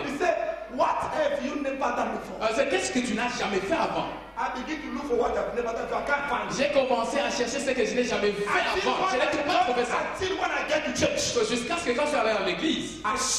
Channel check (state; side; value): identical; both; correlation 1.00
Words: He said, what have you never done before? C'est qu'est-ce que tu n'as jamais fait avant? I begin to look for what I've never done, so I can't find it. J'ai commencé à chercher ce que je n'ai jamais fait avant. Je n'ai pas trouvé ça. Until when I get to church, So, jusqu'à ce que quand je suis allé à l'église, I